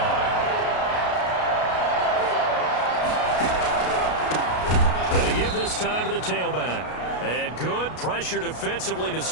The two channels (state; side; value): late; right; 33 ms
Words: And to give this time to the tailback. And good pressure defensively to